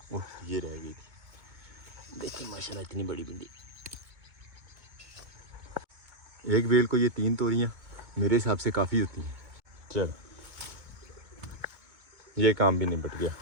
ओह ये रह गई, देखिए माशाल्लाह इतनी बड़ी भिंडी। एक बेल को ये 3 तोरियाँ मेरे हिसाब से काफ़ी होती हैं। चलो ये काम भी निपट गया।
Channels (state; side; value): late; left; 2.2 ms